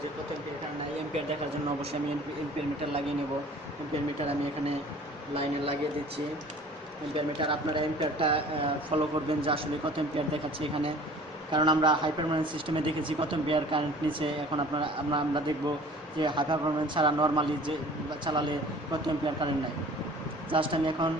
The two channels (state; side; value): normal; both; correlation 0.47